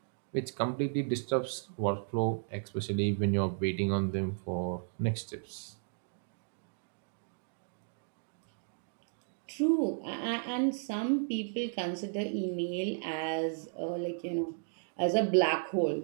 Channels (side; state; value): left; silent; digital silence